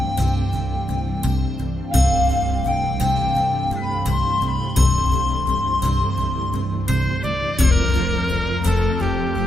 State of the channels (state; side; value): normal; both; correlation 0.82